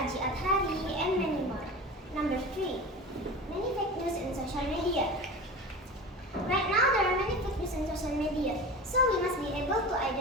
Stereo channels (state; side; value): normal; both; correlation 0.31